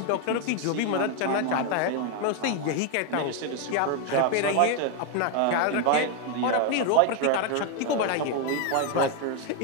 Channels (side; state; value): both; different; correlation 0.01